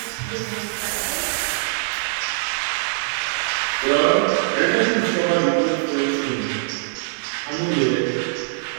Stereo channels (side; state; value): left; silent; digital silence